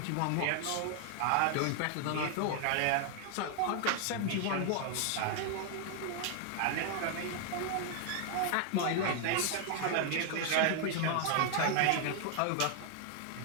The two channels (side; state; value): both; different; correlation 0.00